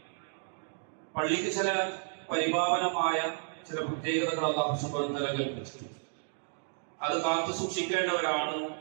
പള്ളിക്ക് ചില പരിപാവനമായ ചില പ്രത്യേകതകൾ അല്ലാഹു സുബ്ഹാനഹു വ തആല കൽപ്പിച്ചിട്ടുണ്ട്. അത് കാത്തു സൂക്ഷിക്കേണ്ടവരാണ്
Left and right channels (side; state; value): left; silent; digital silence